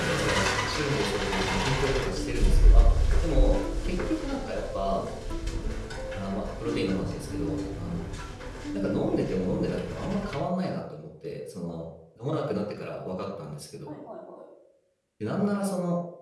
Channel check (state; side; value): identical; both; correlation 1.00